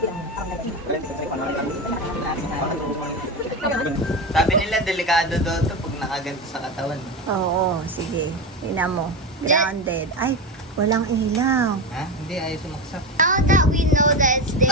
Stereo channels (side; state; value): both; normal; correlation 0.19